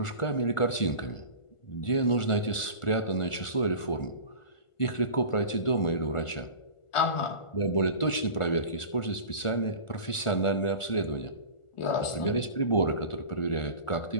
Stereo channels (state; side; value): late; right; 1.4 ms